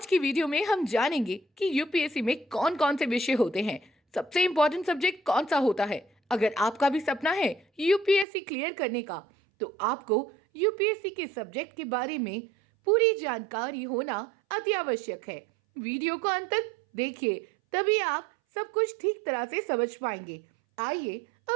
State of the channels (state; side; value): drops out; left; at 8.2 s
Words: की वीडियो में हम जानेंगे कि यूपीएससी में कौन कौन से विषय होते हैं, सबसे इम्पोर्टेंट सब्जेक्ट कौन सा होता है। अगर आपका भी सपना है यूपीएससी क्लियर करने का, तो आपको यूपीएससी के सब्जेक्ट के बारे में पूरी जानकारी होना अति आवश्यक है। वीडियो को अंत तक देखिए, तभी आप सब कुछ ठीक तरह से समझ पाएंगे। आइए